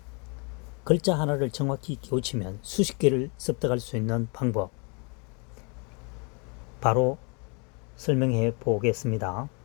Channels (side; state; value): right; quieter; 33.6 dB